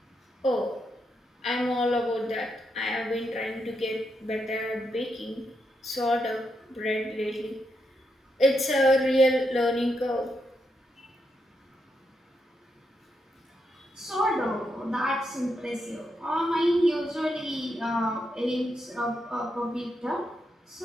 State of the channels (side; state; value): both; normal; correlation 0.82